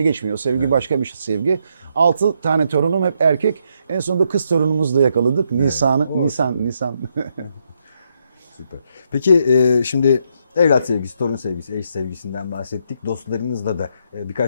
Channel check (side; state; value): both; inverted; correlation -0.77